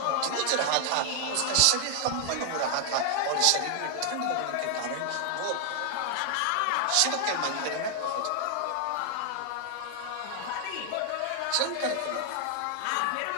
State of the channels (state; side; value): different; both; correlation 0.00